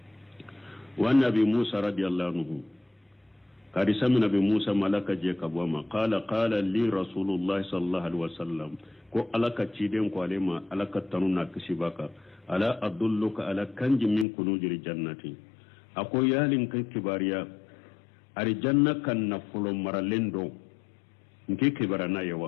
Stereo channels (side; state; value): right; drops out; at 14.2 s